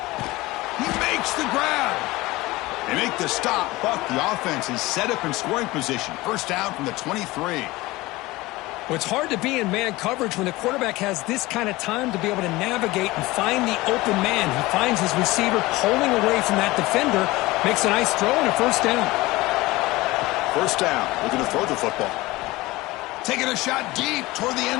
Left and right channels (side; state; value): right; quieter; 20.1 dB